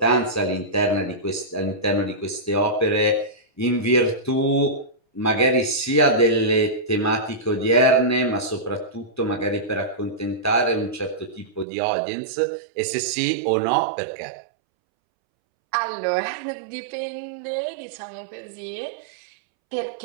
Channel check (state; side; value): drops out; left; at 11.7 s